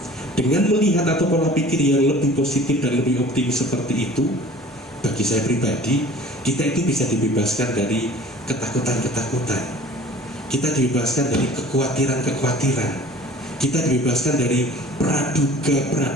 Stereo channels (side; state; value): both; normal; correlation 0.46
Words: Dengan melihat atau pola pikir yang lebih positif dan lebih optimis seperti itu, bagi saya pribadi, kita itu bisa dibebaskan dari ketakutan-ketakutan, kita dibebaskan dari kekhawatiran-kekhawatiran, kita dibebaskan dari